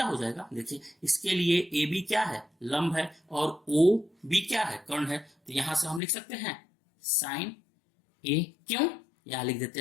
हो जाएगा, देखिए इसके लिए एबी क्या है, लंब है, और ओ बी क्या है, कर्ण है, तो यहां से हम लिख सकते हैं साइन ए, क्यों, यहां लिख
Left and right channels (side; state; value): right; drops out; at 6.0 s